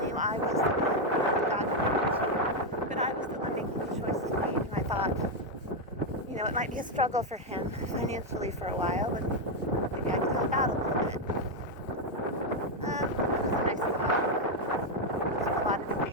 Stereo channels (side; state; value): both; normal; correlation 0.03